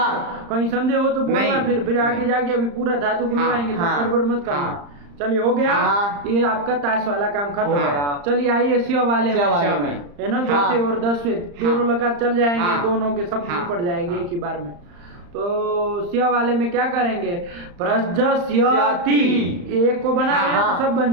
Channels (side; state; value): left; late; 35 ms